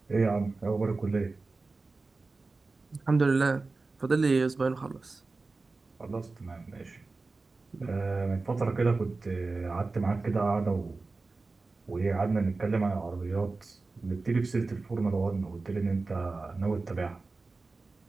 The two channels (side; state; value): left; quieter; 3.7 dB